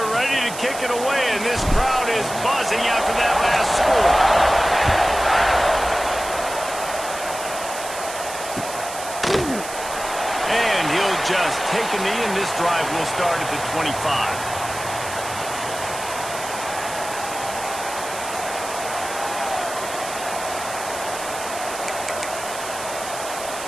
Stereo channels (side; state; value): right; noise; hiss, 10 dB below the sound